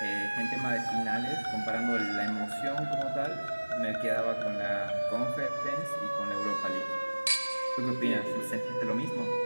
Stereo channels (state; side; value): inverted; both; correlation -1.00